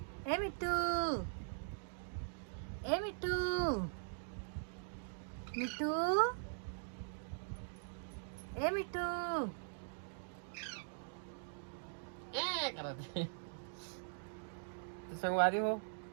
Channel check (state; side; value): silent; left; digital silence